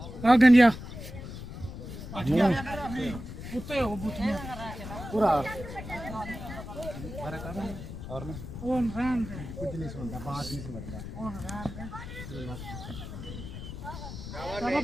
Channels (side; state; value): left; noise; rumble, 10 dB below the sound